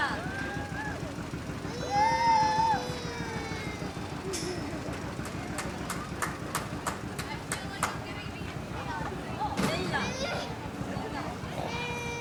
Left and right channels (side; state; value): both; identical; correlation 1.00